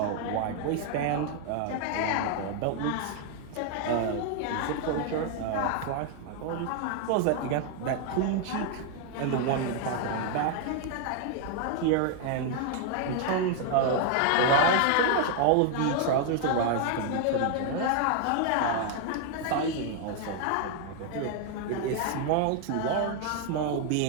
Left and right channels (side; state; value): both; different; correlation 0.00